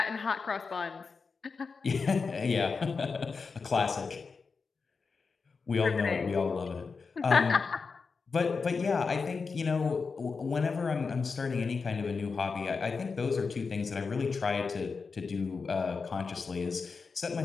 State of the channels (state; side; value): quieter; right; 4.9 dB